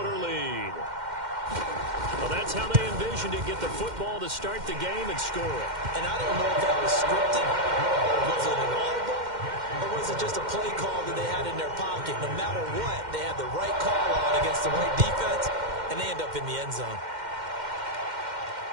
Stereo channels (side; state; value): left; late; 2.1 ms